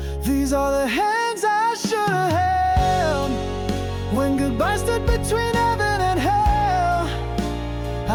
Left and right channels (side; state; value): both; identical; correlation 1.00